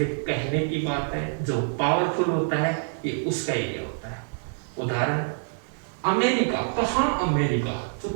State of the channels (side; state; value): left; silent; digital silence